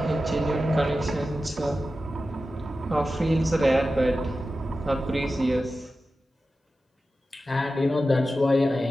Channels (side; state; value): both; normal; correlation 0.93